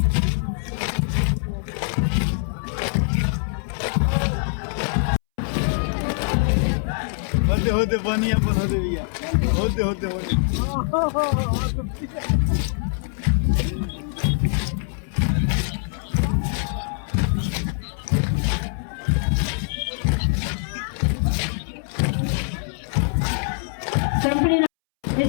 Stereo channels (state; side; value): silent; right; 63 dB below the other